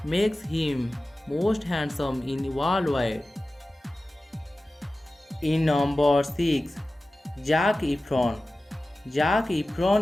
makes him most handsome in worldwide. In number 6, Zac Efron. Zac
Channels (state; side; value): normal; both; correlation 0.96